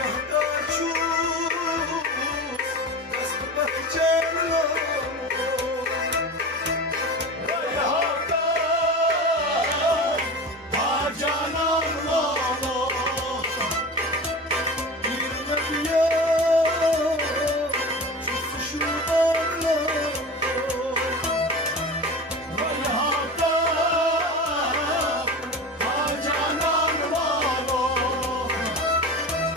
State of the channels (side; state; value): both; normal; correlation 0.31